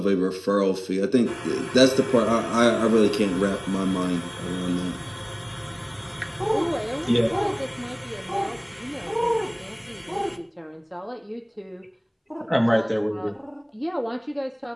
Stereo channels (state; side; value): identical; both; correlation 1.00